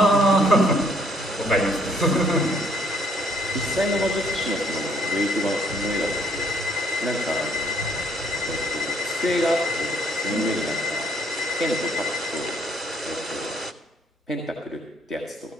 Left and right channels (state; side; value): normal; both; correlation 0.64